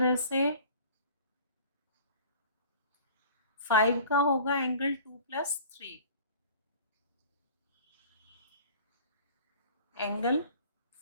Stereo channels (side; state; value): both; inverted; correlation -0.45